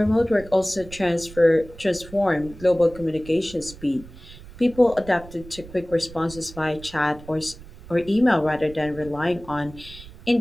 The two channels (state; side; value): noise; right; rumble, 18 dB below the sound